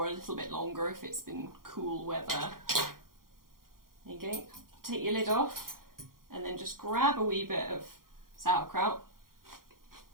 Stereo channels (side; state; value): left; late; 0.91 ms